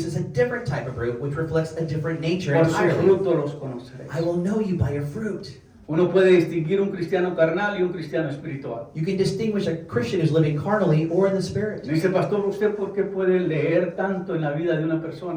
a different type of fruit, which reflects a different nature Por su entirely. fruto los conoceréis. I will know you by your fruit. Uno puede distinguir un cristiano carnal y un cristiano espiritual. You can distinguish a Christian who's living carnally or in the Spirit. Dice, pastor, ¿usted por qué puede leer tanto en la vida de una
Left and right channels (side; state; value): both; identical; correlation 1.00